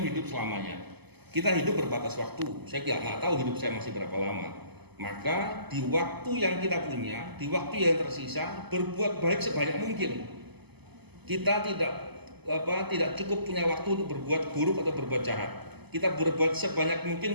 hidup selamanya. Kita hidup berbatas waktu. Saya nggak tahu hidup saya masih berapa lama. Maka di waktu yang kita punya, di waktu yang tersisa, berbuat baik sebanyak mungkin. Kita tidak cukup punya waktu untuk berbuat buruk atau berbuat jahat. Kita berbuat sebanyak mungkin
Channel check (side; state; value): left; late; 0.99 ms